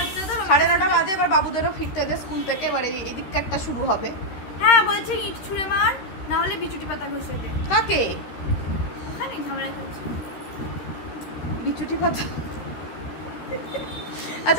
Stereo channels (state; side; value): late; right; 13 ms